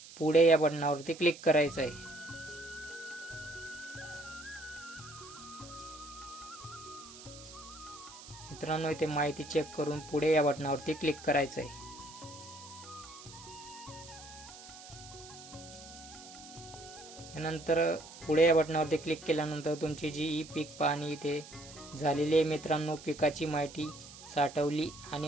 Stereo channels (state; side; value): noise; right; hiss, 16 dB below the sound